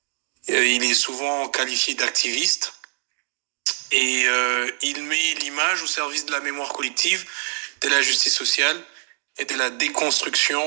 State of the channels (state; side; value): silent; left; 63 dB below the other